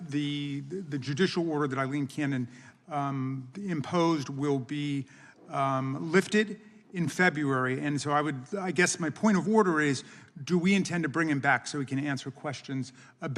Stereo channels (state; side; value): identical; both; correlation 1.00